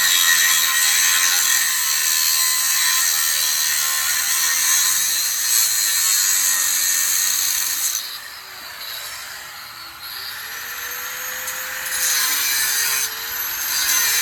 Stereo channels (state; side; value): identical; both; correlation 1.00